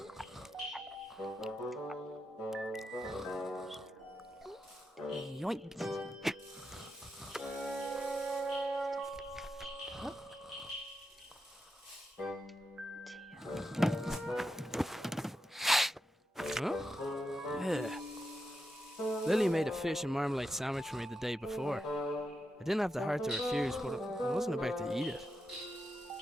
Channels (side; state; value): both; normal; correlation 0.86